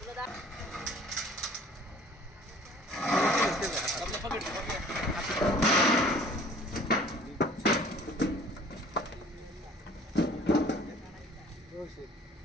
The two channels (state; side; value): normal; both; correlation 0.51